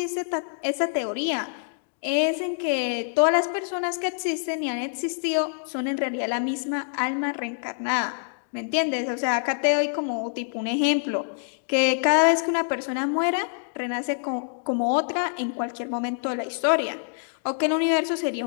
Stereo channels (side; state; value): right; silent; digital silence